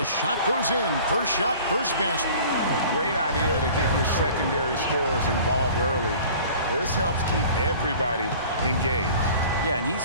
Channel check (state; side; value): inverted; both; correlation -0.46